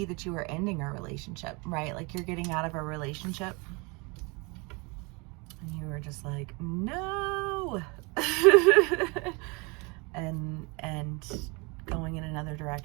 that you are ending a relationship, right? Like you're getting out of a relationship and you were just like, no, and going in another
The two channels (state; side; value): quieter; left; 28.8 dB